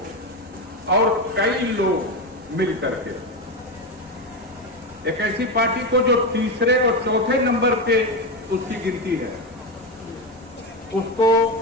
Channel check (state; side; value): normal; both; correlation 0.14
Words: और कई लोग मिल करके एक ऐसी पार्टी को जो तीसरे और चौथे नंबर पे उसकी गिनती है, उसको